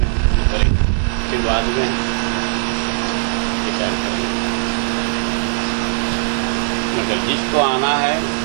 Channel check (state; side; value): silent; left; digital silence